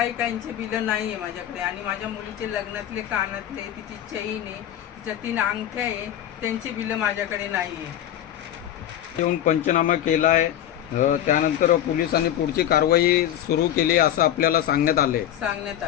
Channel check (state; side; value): quieter; right; 11.3 dB